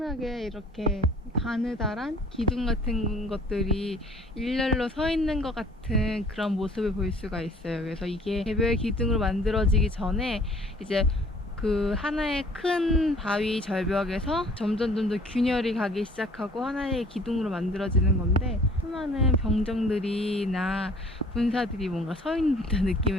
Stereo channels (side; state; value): both; normal; correlation 0.53